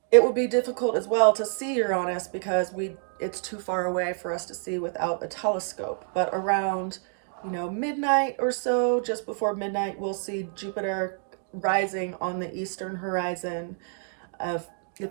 it will be difficult as well to see Uranus because it's too far away for us to see without a telescope. But around, midnight or so, just before midnight, we'll see Jupiter rising on the eastern horizon.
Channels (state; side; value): silent; left; 60 dB below the other